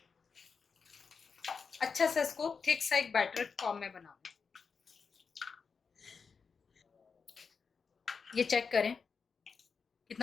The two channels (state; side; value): quieter; right; 5.4 dB